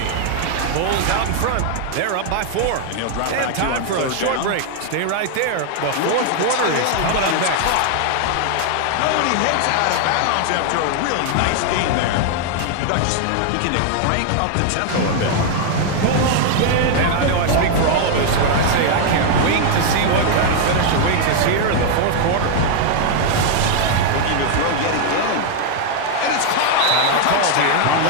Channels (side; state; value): both; different; correlation 0.00